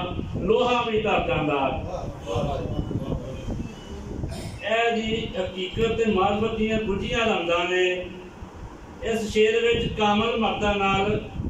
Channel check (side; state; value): both; identical; correlation 1.00